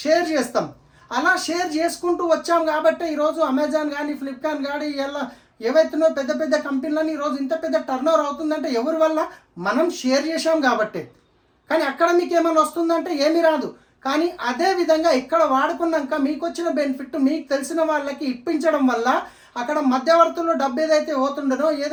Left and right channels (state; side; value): identical; both; correlation 1.00